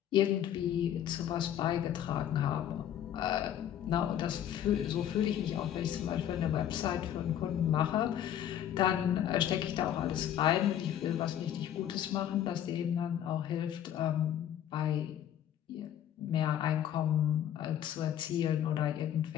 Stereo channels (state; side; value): quieter; right; 10.6 dB